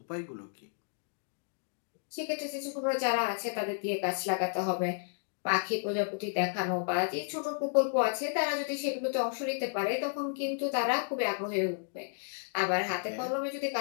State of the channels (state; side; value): silent; right; digital silence